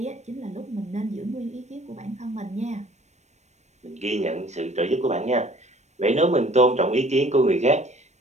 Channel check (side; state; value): left; late; 0.33 ms